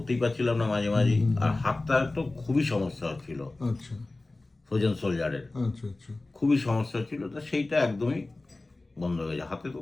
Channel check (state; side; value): quieter; right; 3.1 dB